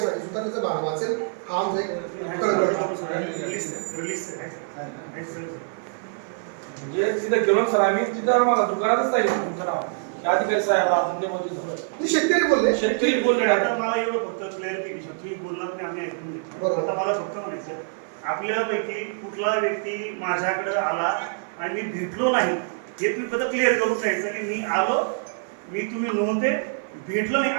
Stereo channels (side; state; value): left; silent; 56 dB below the other